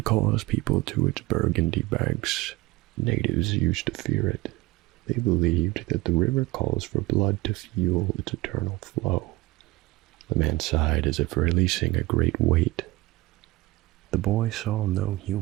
calls people to its burgundy banks. Natives used to fear it. They believed that the river calls for blood to fuel its eternal flow." The man sighed as if releasing a great weight. The boy saw no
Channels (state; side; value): quieter; left; 20.1 dB